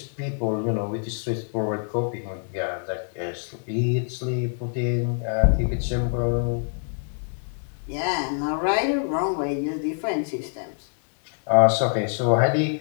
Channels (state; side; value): silent; right; 60 dB below the other